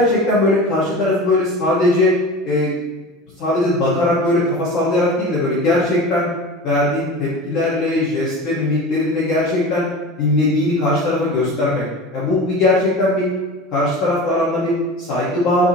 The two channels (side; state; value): both; normal; correlation 0.33